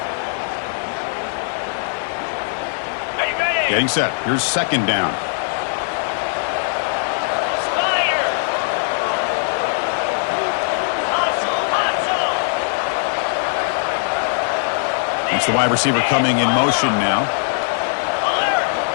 Getting set. Here's 2nd down. It's the wide receiver coming in motion now.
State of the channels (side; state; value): right; silent; digital silence